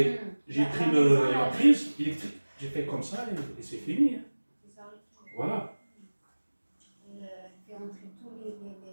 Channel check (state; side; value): inverted; both; correlation -1.00